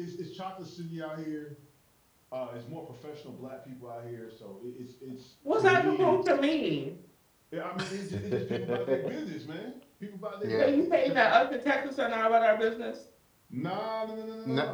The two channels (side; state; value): both; identical; correlation 1.00